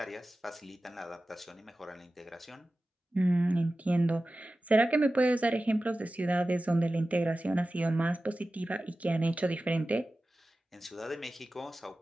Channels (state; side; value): normal; both; correlation 0.95